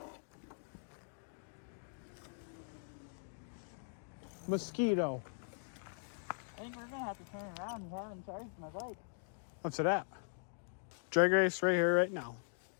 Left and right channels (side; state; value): right; silent; digital silence